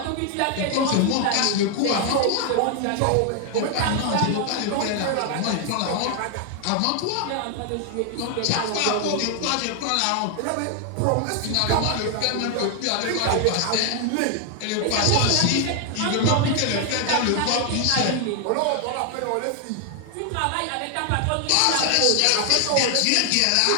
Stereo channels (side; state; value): both; different; correlation 0.00